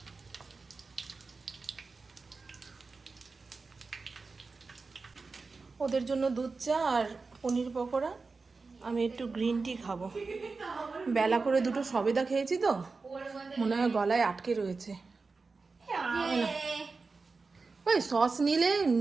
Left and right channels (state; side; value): quieter; left; 4.2 dB